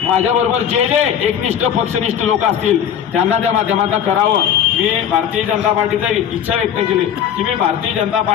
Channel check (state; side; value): quieter; right; 9.0 dB